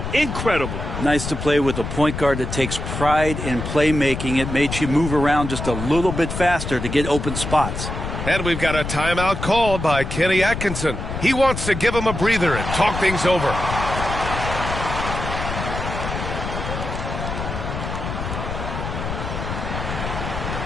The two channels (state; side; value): noise; left; rumble, 5 dB below the sound